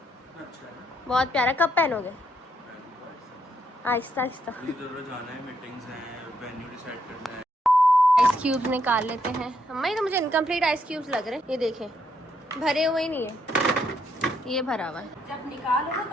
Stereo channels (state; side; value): normal; both; correlation 0.75